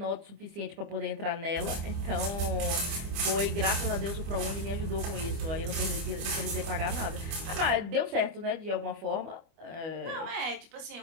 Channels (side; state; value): left; late; 25 ms